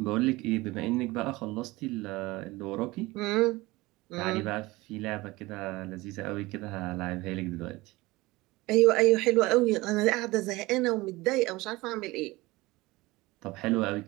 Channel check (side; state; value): left; quieter; 20.9 dB